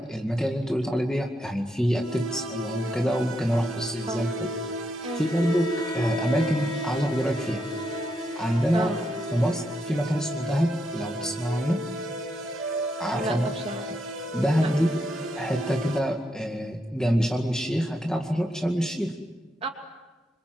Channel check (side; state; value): both; normal; correlation 0.81